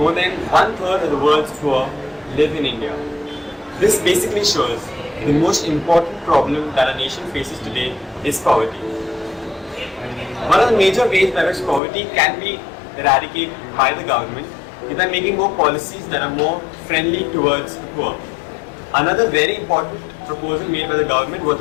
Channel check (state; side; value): drops out; right; at 11.8 s